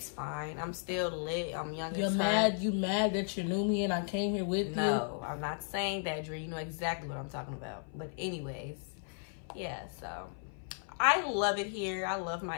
fine. I'm still lit. I'm young and fun. You mad that you knew me and I came here with you? No, I'm not saying that, Dre. You know exactly what I'm talking about. But anyways, yeah, so I love it here. I love my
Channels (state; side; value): silent; right; 54 dB below the other